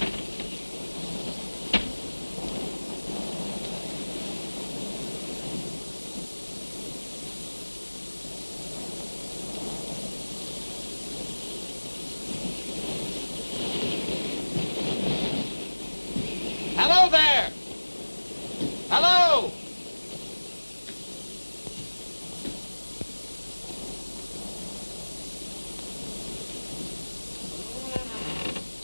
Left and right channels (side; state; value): both; inverted; correlation -1.00